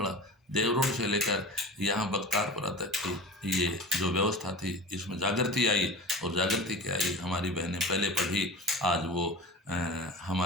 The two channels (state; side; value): normal; both; correlation 0.33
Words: देवरोड से लेकर यहाँ बख्तारपुरा तक की ये जो व्यवस्था थी, इसमें जागृति आई और जागृति क्या आई, हमारी बहनें पहले पढ़ी, आज वो